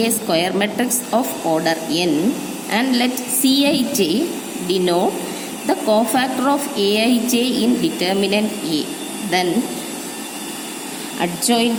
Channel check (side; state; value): both; identical; correlation 1.00